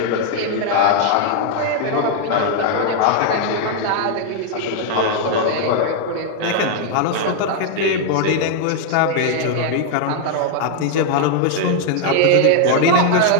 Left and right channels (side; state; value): both; different; correlation 0.00